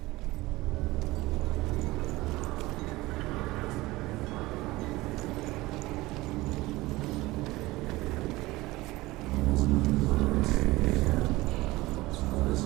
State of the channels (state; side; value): quieter; left; 19.8 dB